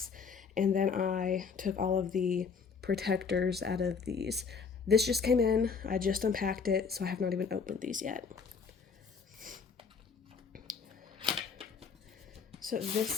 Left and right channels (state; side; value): quieter; right; 5.6 dB